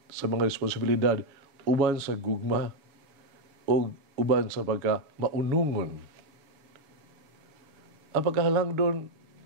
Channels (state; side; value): late; left; 6.9 ms